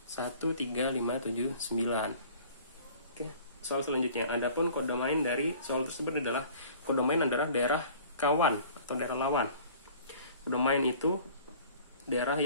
1, 3, 5, 7, 9. Oke, soal selanjutnya. Adapun kodomain dari soal tersebut adalah kodomain adalah daerah kawan atau daerah lawan. Kodomain itu daerah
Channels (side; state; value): both; inverted; correlation -0.48